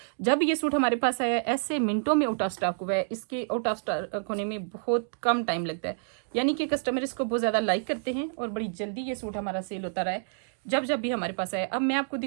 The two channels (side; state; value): left; silent; digital silence